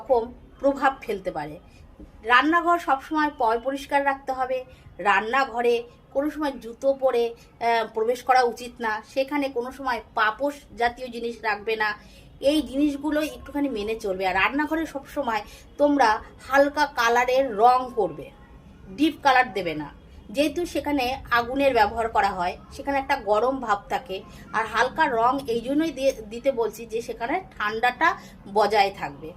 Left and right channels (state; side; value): identical; both; correlation 1.00